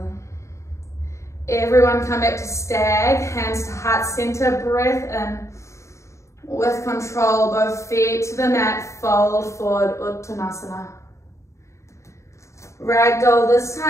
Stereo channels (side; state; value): right; late; 0.14 ms